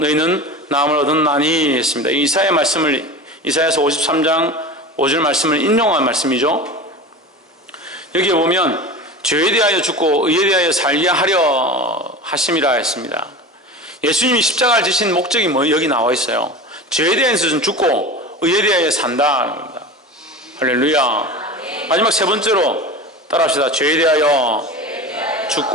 나음을 얻었나니 했습니다. 이사야 말씀을 이사야서 53장 5절 말씀을 인용한 말씀이죠. 여기에 보면 죄에 대하여 죽고 의에 대하여 살게 하려 하심이라 했습니다. 예수님이 십자가를 지신 목적이 여기 나와 있어요. 죄에 대해서는 죽고 의에 대하여 산다는 겁니다. 할렐루야. 마지막 세 번째로 따라합시다. 죄에 대하여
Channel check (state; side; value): normal; both; correlation 0.31